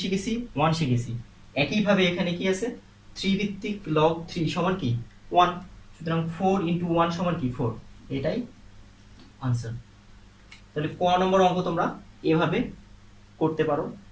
শিখেছি? 1 শিখেছি। একইভাবে এখানে কি আছে? 3 ভিত্তিক লগ 3 সমান কি? 1। সুতরাং 4 × 1 সমান কি? 4। এটাই আনসার। তাহলে ক নম্বর অঙ্ক তোমরা এভাবে করতে পারো।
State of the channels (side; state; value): both; identical; correlation 1.00